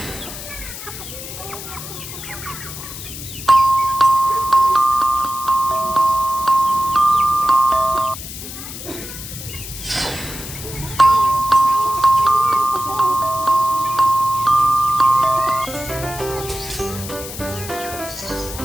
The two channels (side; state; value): left; noise; hiss, 10 dB below the sound